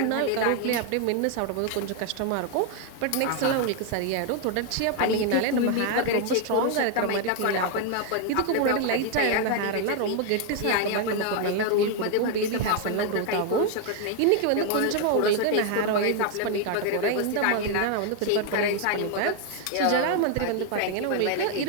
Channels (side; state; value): both; different; correlation 0.00